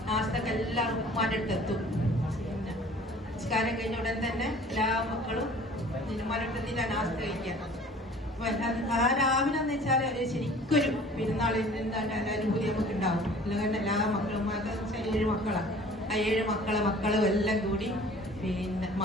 നാസ്തക്ക് എല്ലാവർക്കും ഉമ്മാന്റെ അടുത്ത് എത്തും. പിന്നെ നിസ്കാരം കഴിഞ്ഞ ഉടൻ തന്നെ എല്ലാ മക്കളും ഉമ്മാരെടുത്തിട്ട് നാസ്ത കഴിക്കാം. ആ രാവിലെ എന്ന് വെച്ചാൽ ശരിക്കൊരു പെരുന്നാളിന് അനുഭൂതി നമുക്ക് ഉണ്ടാവും. അല്ലെങ്കിൽ എല്ലാ മക്കളും 7 മക്കളാണ്. ആ 7 മക്കളും എല്ലാം കൂടി പിന്നെ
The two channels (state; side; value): normal; both; correlation 0.49